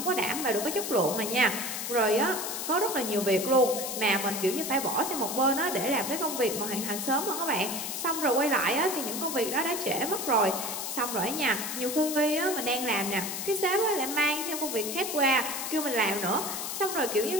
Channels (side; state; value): left; noise; hiss, 4 dB below the sound